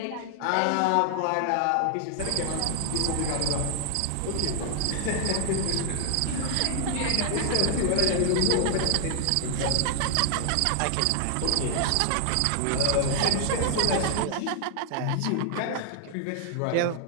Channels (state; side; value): different; both; correlation 0.00